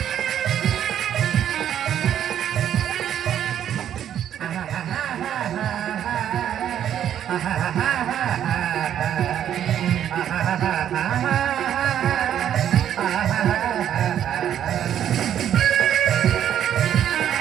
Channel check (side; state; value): left; quieter; 10.2 dB